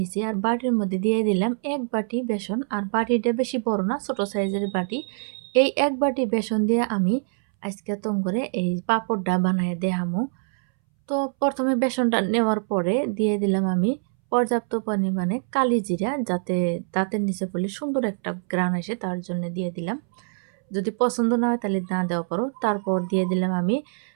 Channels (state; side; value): silent; left; 62 dB below the other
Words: আর বাটির মধ্যে দিয়ে দিলাম ১ বাটি বেসন। আর বাটিটা বেশি বড় না, ছোট সাইজের বাটি। এই ১ বাটি বেসন দিয়ে আমি আজকে তং করে এই পাঁপড়টা বানায় দেখামু। তো প্রথমে বেসনটা নেওয়ার পরে দিয়ে দিলাম আমি পর্যাপ্ত পরিমাণে কালি জিরা, যাতে দাঁতের নিচে পড়লে সুন্দর একটা ঘ্রাণ আসে, তার জন্য দিয়ে দিলাম। যদি পছন্দ না হয় তাহলে না দেওয়া পারো। তারপর দিয়ে দিলাম আমি